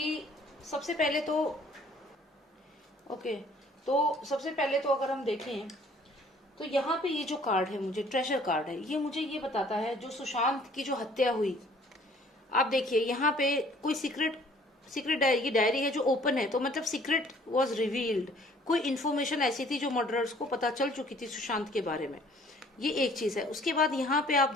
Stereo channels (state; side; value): normal; both; correlation 0.56